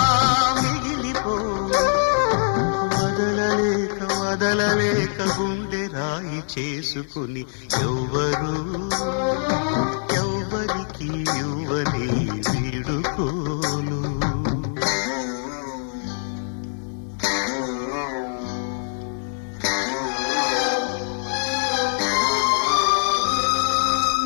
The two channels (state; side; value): silent; right; 63 dB below the other